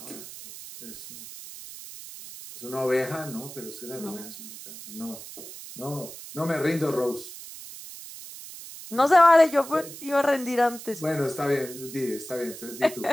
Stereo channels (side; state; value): right; noise; hiss, 13 dB below the sound